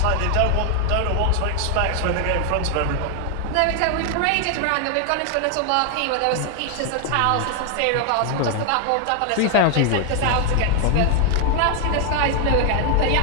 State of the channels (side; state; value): both; different; correlation 0.00